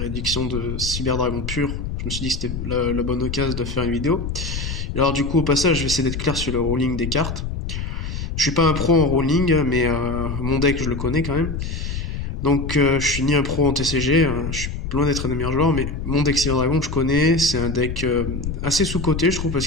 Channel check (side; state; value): left; noise; rumble, 5 dB below the sound